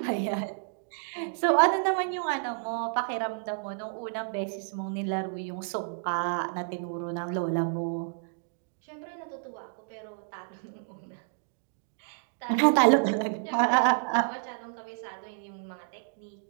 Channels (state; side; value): silent; left; digital silence